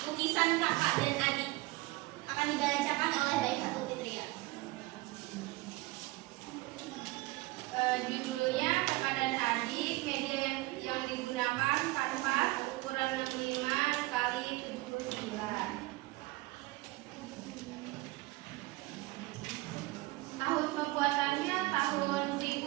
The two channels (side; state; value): left; quieter; 21.4 dB